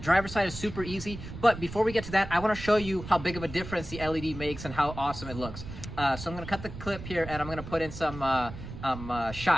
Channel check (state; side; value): noise; right; rumble, 11 dB below the sound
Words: side is super easy, but before we get to that, I want to show you how big of a difference the LED makes and how awesome it looks. So I'm going to cut the clip here, and I'm going to put in some